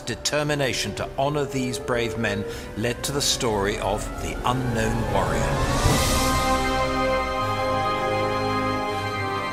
determination to honor these brave men led to the story of the Unknown Warrior.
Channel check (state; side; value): identical; both; correlation 1.00